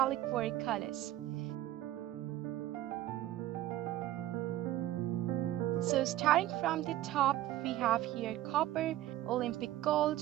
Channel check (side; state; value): left; quieter; 14.3 dB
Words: colors. So starting from the top, we have here copper, Olympic gold,